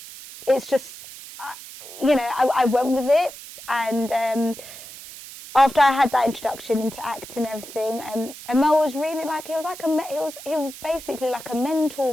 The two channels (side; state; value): right; noise; hiss, 15 dB below the sound